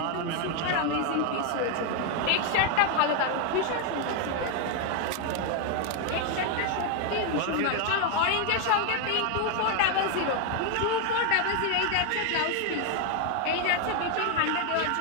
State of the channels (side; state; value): both; different; correlation 0.00